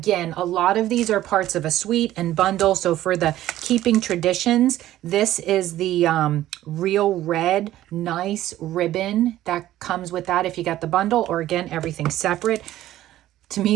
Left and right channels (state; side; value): quieter; left; 14.0 dB